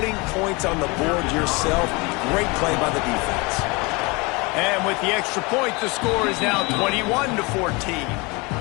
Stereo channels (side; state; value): right; quieter; 26.7 dB